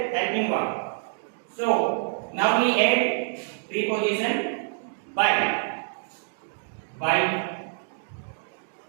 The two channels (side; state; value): left; silent; digital silence